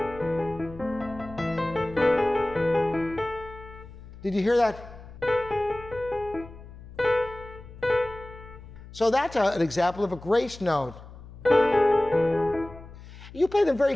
Did you hear that? So that's an example of a grace note. You play them very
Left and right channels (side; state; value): left; noise; hum, 17 dB below the sound